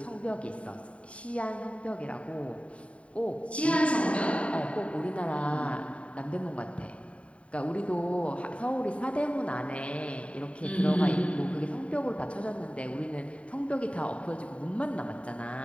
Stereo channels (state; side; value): late; right; 0.064 ms